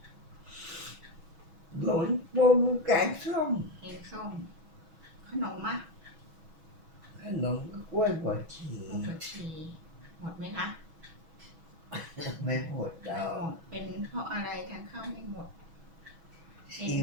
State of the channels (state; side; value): late; left; 6.2 ms